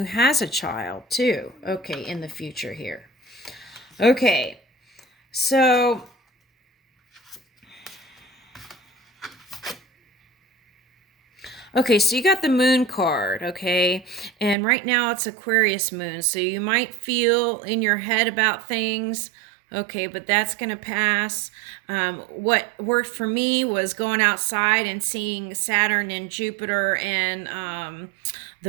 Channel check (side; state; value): left; drops out; at 14.6 s